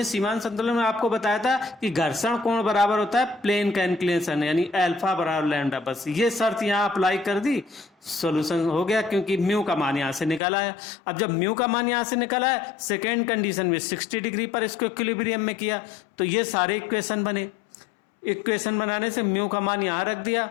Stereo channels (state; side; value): drops out; right; at 10.4 s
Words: सीमांत संतुलन में आपको बताया था कि घर्षण कोण बराबर होता है प्लेन का इंक्लिनेशन, यानी अल्फा बराबर लैम्डा। बस ये शर्त यहाँ अप्लाई कर दी, सॉल्यूशन हो गया, क्योंकि म्यू का मान यहाँ से निकाला है। अब जब म्यू का मान यहाँ से निकाला है, सेकेंड कंडीशन में 60 डिग्री पर इसको इक्विलिब्रियम में किया, तो ये सारे इक्वेशन बने। इक्वेशन बनाने से म्यू का मान यहाँ रख दिया,